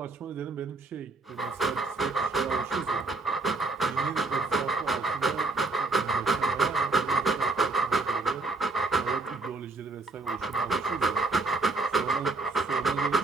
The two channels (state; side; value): quieter; left; 3.5 dB